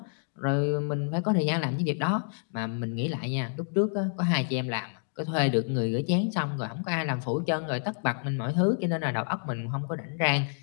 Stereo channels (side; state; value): right; silent; digital silence